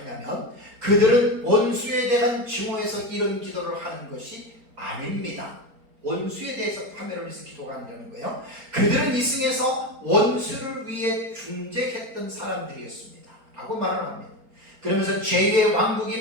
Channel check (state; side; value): late; left; 4.3 ms